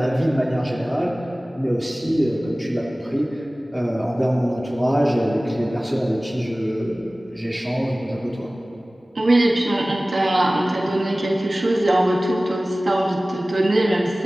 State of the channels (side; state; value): both; normal; correlation 0.98